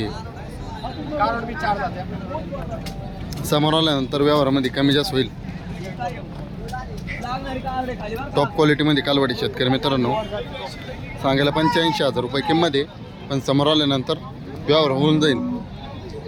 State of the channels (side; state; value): both; identical; correlation 1.00